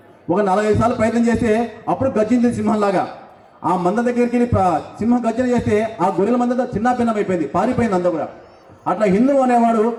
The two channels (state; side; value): identical; both; correlation 1.00